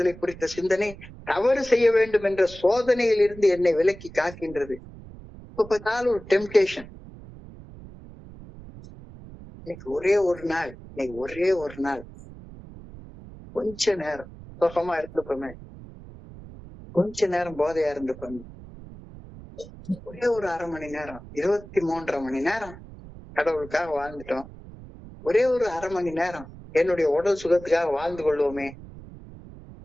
குறித்த சிந்தனை தவறு செய்ய வேண்டும் என்ற சோதனையில் இருந்து என்னை விலக்கி காக்கின்றது. இப்ப பார்த்தாலும் ஒரு டெம்டேஷன். இன்னைக்கு ஒரே ஒரு நாள் கொஞ்ச நேரம் சுகமா இருந்துப்போமே, கொஞ்ச நேரம் போதையா இருந்துப்போமே, ஒரே ஒரு அரை மணி நேரம், 23.5 மணி நேரம் கடவுளுக்காக வாழ்ந்துட்டோம், ஒரே ஒரு அரை மணி நேரம் என்னுடைய உடல் சுகத்துக்காக வாழ்ந்து கொள்வோமே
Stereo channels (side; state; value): right; noise; rumble, 17 dB below the sound